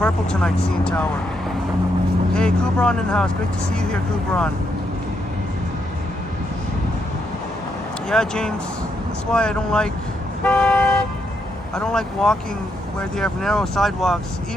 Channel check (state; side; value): normal; both; correlation 0.78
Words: tonight, CN Tower. Hey, Kubron in the house. Great to see you here, Kubron. Yeah, James. That's why I don't like walking where they have narrow sidewalks.